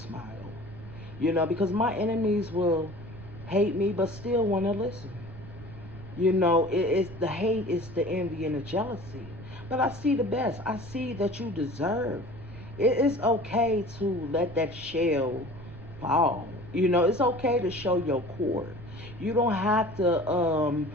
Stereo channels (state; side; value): noise; right; rumble, 15 dB below the sound